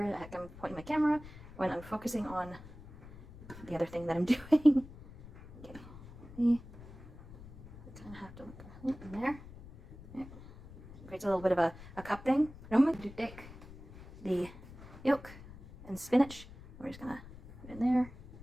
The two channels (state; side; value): noise; left; rumble, 17 dB below the sound